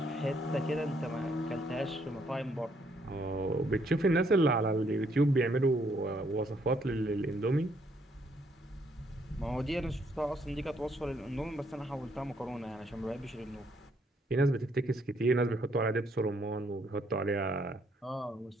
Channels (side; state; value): both; normal; correlation 0.70